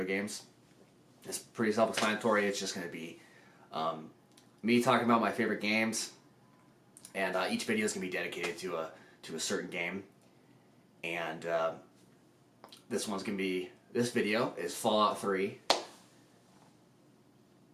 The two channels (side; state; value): both; identical; correlation 1.00